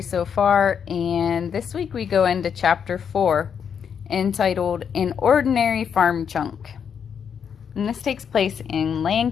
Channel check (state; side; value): quieter; right; 7.4 dB